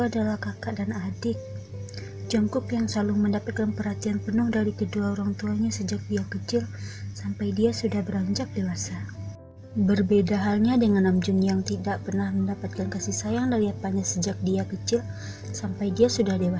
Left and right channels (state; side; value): identical; both; correlation 1.00